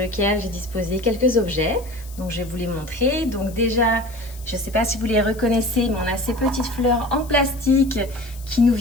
j'ai disposé quelques objets. Donc je vais vous les montrer. Donc déjà, je ne sais pas si vous les reconnaissez, mais on a ces petites fleurs en plastique qui nous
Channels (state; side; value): noise; left; hiss, 20 dB below the sound